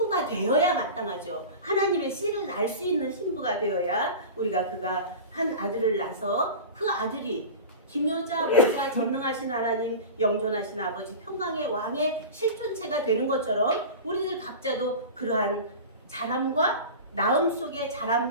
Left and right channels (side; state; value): both; inverted; correlation -0.32